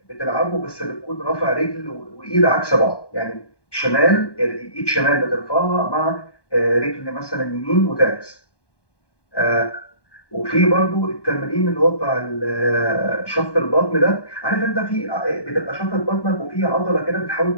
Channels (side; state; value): right; late; 1.2 ms